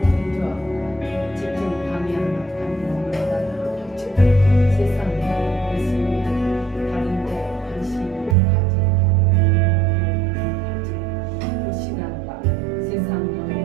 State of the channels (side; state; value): left; drops out; at 8.3 s